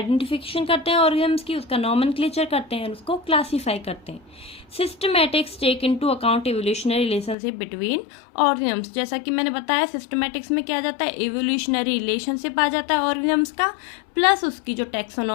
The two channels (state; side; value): drops out; right; at 7.4 s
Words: करते हैं ऑर्गेनिम्स की, उसका नॉमेनक्लेचर करते हैं, उसको क्लासीफाई करते हैं। Systematics take into account evolutionary relationship between organisms. जैसा कि मैंने बताया सिस्टमैटिक्स में क्या आ जाता है, इवोल्यूशनरी रिलेशनशिप आ जाता है ऑर्गेनिम्स का, प्लस उसकी जो